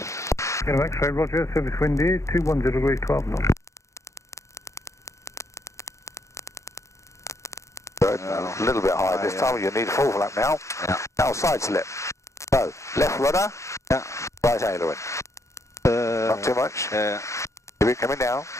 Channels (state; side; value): late; right; 0.14 ms